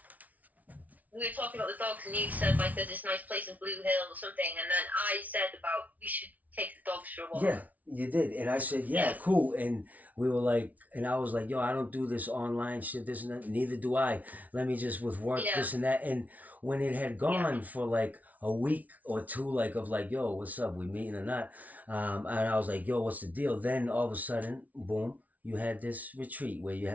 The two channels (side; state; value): left; late; 0.073 ms